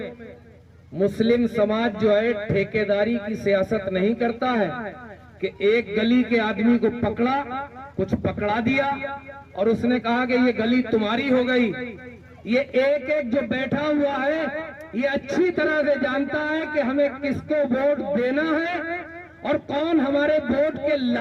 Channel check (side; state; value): both; identical; correlation 1.00